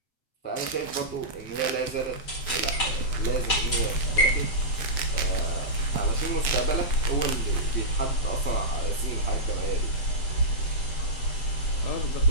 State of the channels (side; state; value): right; late; 7.3 ms